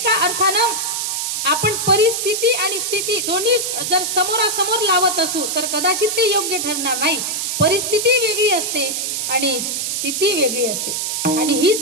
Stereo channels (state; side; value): noise; right; hiss, 1 dB below the sound